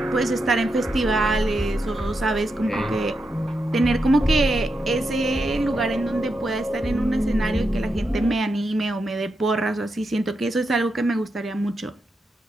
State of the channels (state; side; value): normal; both; correlation 0.85